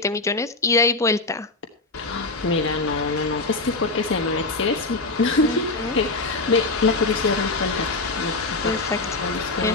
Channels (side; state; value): right; quieter; 3.3 dB